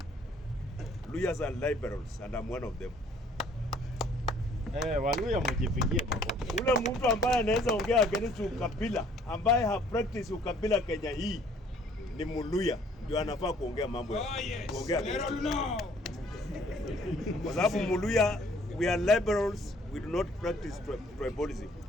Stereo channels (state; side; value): normal; both; correlation 0.59